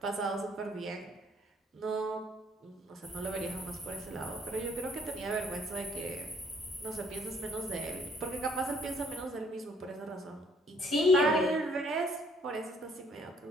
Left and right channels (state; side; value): normal; both; correlation 0.63